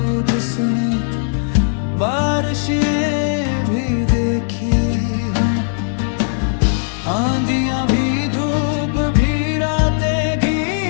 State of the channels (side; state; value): right; silent; 67 dB below the other